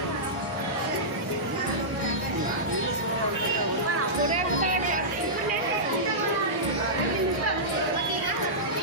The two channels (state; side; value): late; left; 1.6 ms